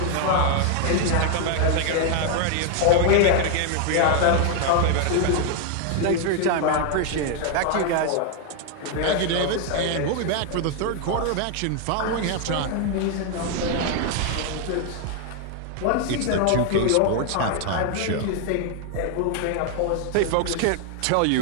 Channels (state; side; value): different; both; correlation 0.00